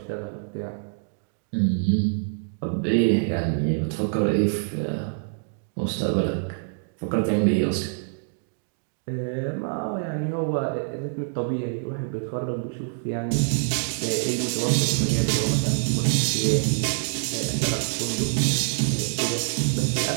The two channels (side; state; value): left; silent; digital silence